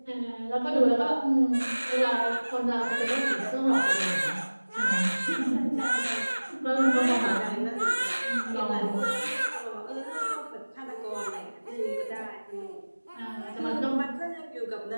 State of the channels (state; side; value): inverted; both; correlation -1.00